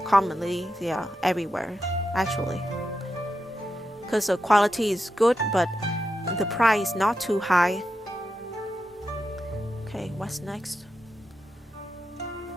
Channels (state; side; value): normal; both; correlation 0.87